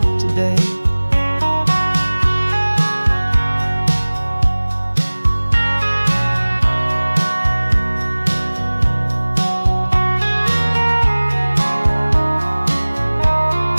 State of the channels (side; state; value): both; inverted; correlation -1.00